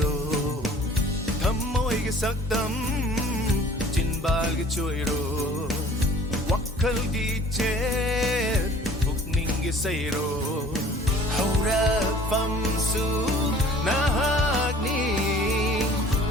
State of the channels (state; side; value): normal; both; correlation 0.49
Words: ro thầm môi cái sắc tâm chin bal cái chuối ro wakkal di chết bục ninh cái say ro hầu ra pham su na hak ni